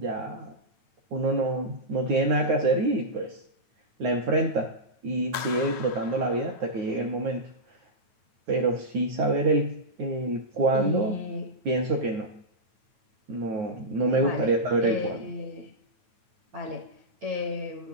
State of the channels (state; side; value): late; left; 9.1 ms